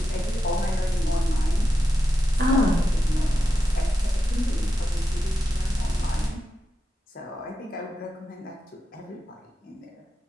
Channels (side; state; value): both; normal; correlation 0.89